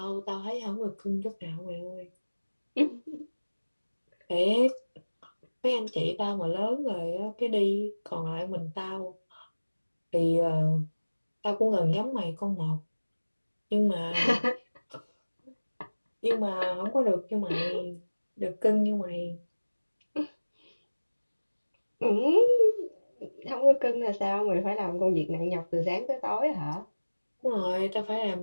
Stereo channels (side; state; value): both; inverted; correlation -1.00